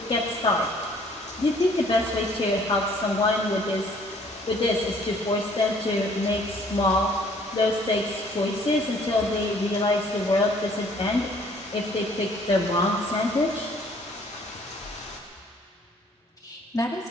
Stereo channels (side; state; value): both; normal; correlation 0.58